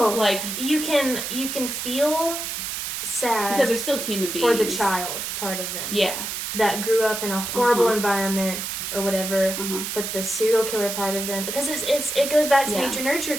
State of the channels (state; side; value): noise; right; hiss, 4 dB below the sound